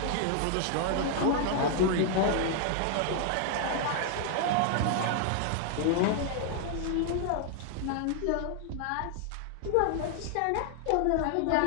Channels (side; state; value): both; different; correlation 0.00